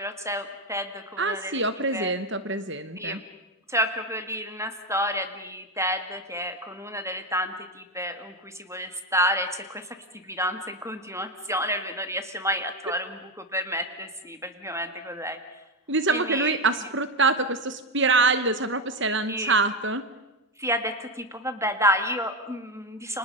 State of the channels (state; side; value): normal; both; correlation 0.11